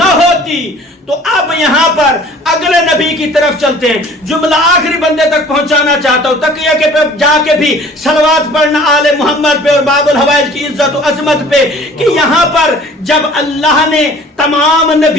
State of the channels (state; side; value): normal; both; correlation 0.49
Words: ہوتی. تو اب یہاں پر اگلے نبی کی طرف چلتے ہیں. جملہ آخری بندے تک پہنچانا چاہتا ہوں, تقیہ کے پہ جا کے بھی صلوات پڑھنا آل محمد پہ اور باب الحوائج کی عزت و عظمت پہ, کہ یہاں پر جب اللہ نے تمام